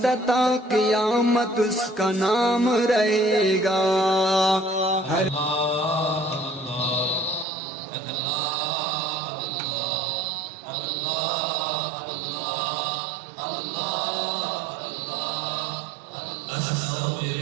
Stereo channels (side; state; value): left; drops out; at 7.5 s